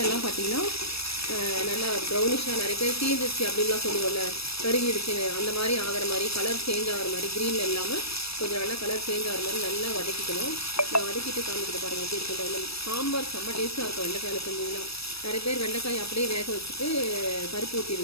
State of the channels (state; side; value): late; right; 0.78 ms